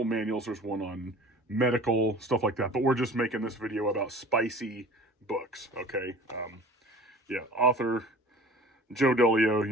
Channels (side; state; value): both; normal; correlation 0.43